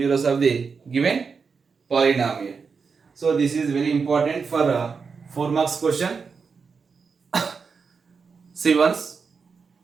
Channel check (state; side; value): quieter; left; 5.4 dB